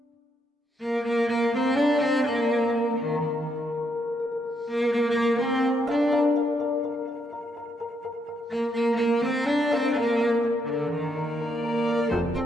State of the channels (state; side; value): normal; both; correlation 0.77